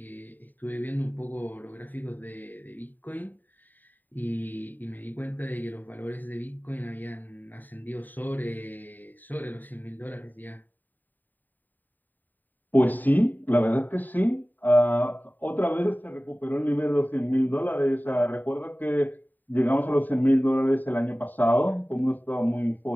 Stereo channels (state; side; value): late; right; 0.088 ms